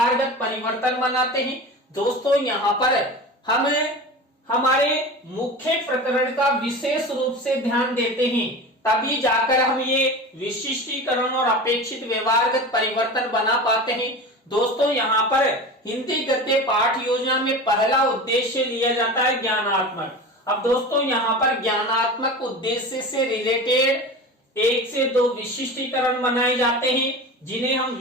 परिवर्तन बनाते हैं। दोस्तों, यहाँ पर हम हमारे मुख्य प्रकरण का विशेष रूप से ध्यान देते हैं, तभी जाकर हम ये विशिष्टीकरण और अपेक्षित व्यवहारगत परिवर्तन बना पाते हैं। दोस्तों, यहाँ पर हिंदी गद्य पाठ योजना में पहला उद्देश्य लिया जाता है ज्ञानात्मक। अब दोस्तों, यहाँ पर ज्ञानात्मक उद्देश्य से रिलेटेड 1 से 2 विशिष्टीकरण बनाए जाते हैं, जिन्हें हम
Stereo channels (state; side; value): normal; both; correlation 0.31